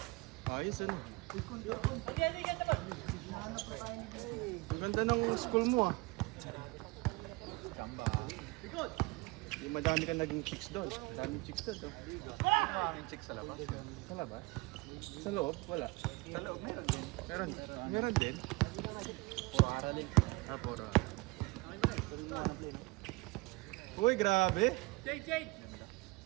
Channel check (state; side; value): quieter; left; 25.0 dB